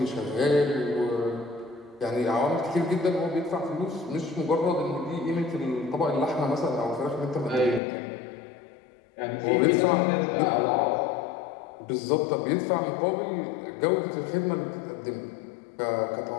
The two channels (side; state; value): right; drops out; at 7.8 s